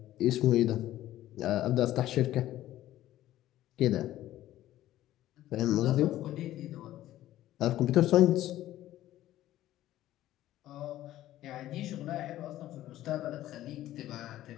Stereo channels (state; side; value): quieter; right; 14.0 dB